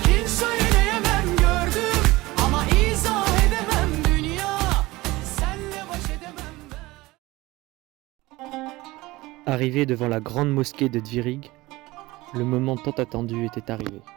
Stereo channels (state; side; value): quieter; left; 20.1 dB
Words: söyleyemem, gördüm ama izah edemem. Dünya senle baş edemem. Arrivé devant la grande mosquée de Dvirig, le moment tant attendu était arrivé.